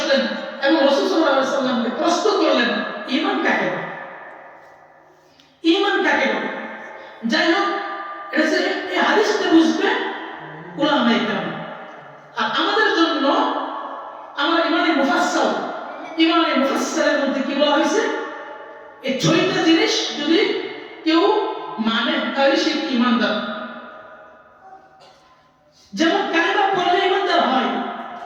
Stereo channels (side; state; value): both; identical; correlation 1.00